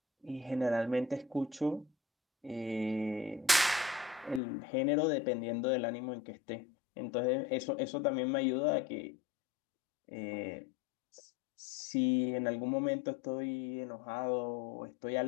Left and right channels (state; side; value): drops out; right; at 4.4 s